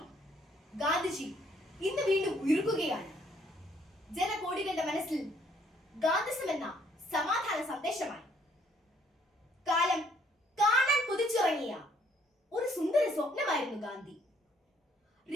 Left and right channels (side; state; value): both; normal; correlation 0.66